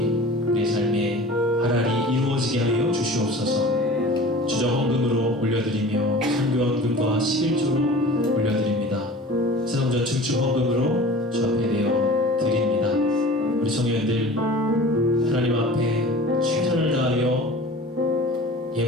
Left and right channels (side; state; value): both; normal; correlation 0.41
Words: 우리의 삶에 하나리 이루어지게 하여 주시옵소서. 주정헌금으로 올려드리며 선교헌금과 11조로 올려드립니다. 세성전 증축헌금으로 주 앞에 내어 드립니다. 우리 성도님들 하나님 앞에 최선을 다하여